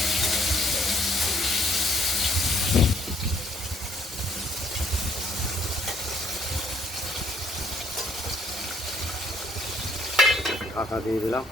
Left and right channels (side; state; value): both; normal; correlation 0.66